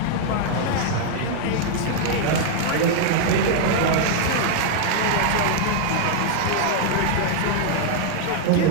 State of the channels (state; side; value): different; both; correlation 0.00